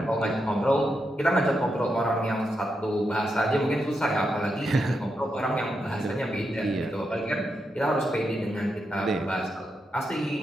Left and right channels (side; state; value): both; normal; correlation 0.84